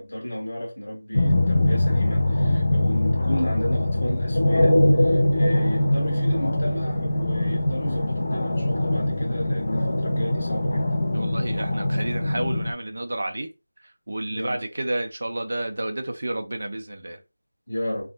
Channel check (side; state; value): both; inverted; correlation -0.97